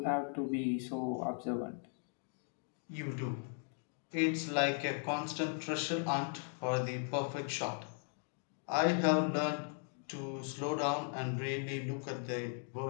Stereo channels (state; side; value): silent; right; 53 dB below the other